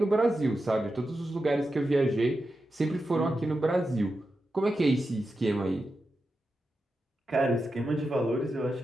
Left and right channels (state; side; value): normal; both; correlation 0.90